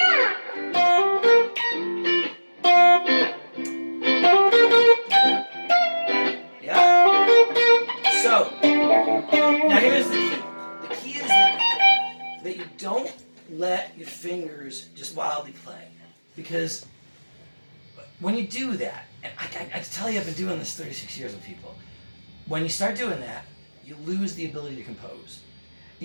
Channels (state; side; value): inverted; both; correlation -1.00